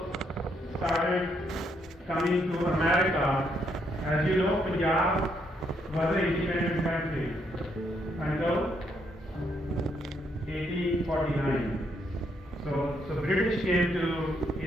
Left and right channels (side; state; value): both; normal; correlation 0.74